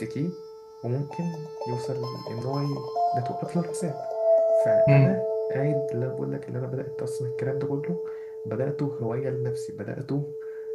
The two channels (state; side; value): identical; both; correlation 1.00